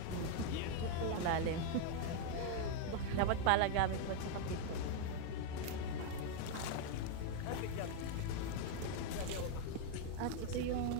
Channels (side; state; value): both; different; correlation 0.00